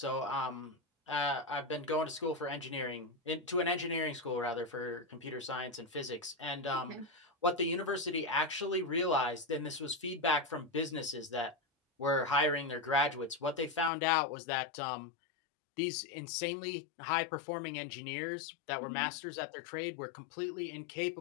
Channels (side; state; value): right; drops out; at 13.9 s